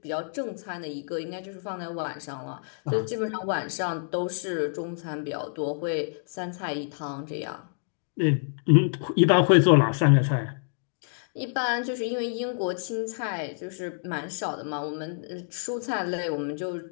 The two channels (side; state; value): right; silent; digital silence